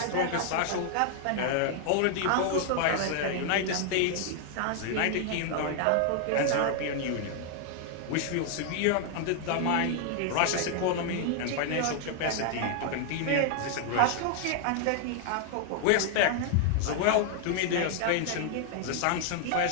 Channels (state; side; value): different; both; correlation 0.00